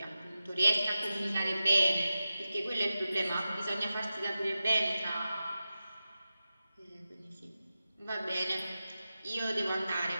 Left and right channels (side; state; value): both; inverted; correlation -0.94